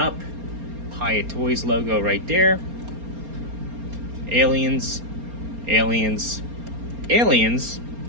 Hiya Toys logo right there. Aliens. Aliens. Aliens.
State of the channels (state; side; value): late; left; 4.3 ms